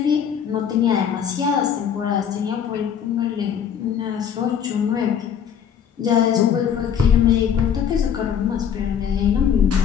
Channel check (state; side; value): quieter; right; 8.2 dB